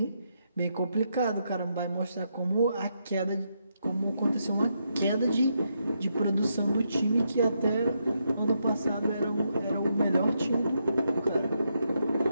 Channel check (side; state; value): both; inverted; correlation -0.80